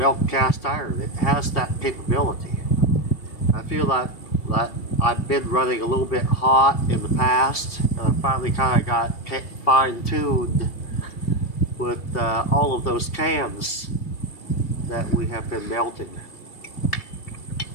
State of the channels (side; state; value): right; late; 2.9 ms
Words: cast iron. It has that capability. I feel like I've been running a little bit hot in the past, and I finally kind of got fine-tuned with all of those cans that we have been melting.